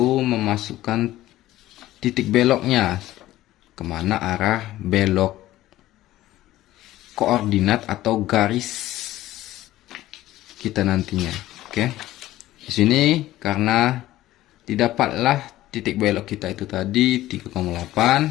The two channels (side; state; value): right; quieter; 15.3 dB